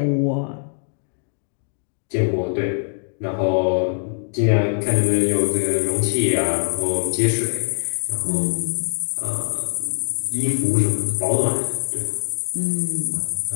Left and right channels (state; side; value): silent; right; digital silence